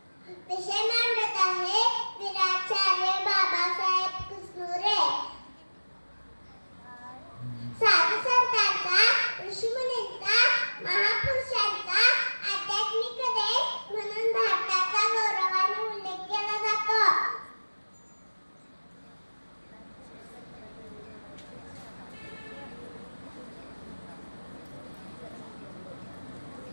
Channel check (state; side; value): inverted; both; correlation -1.00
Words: विषय मांडत आहे. वीराचार्य बाबासाहेब कुसनुरे. साधू संतांचा, ऋषीमुनींचा, महापुरुषांचा आध्यात्मिक देश म्हणून भारताचा गौरवाने उल्लेख केला जातो.